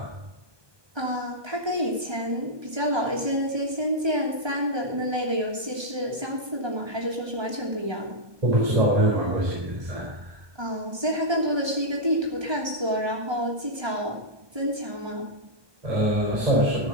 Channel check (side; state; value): left; late; 1.3 ms